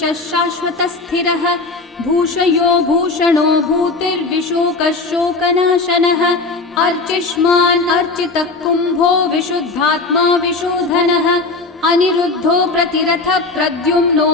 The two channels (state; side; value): quieter; right; 3.6 dB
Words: शाश्वतस्थिरः भूषयो भूषणो भूतिर्विशोकः शोकनाशनः अर्चिष्मान् अर्चितः कुम्भो विशुद्धात्मा विशोधनः अनिरुद्धो प्रतिरथः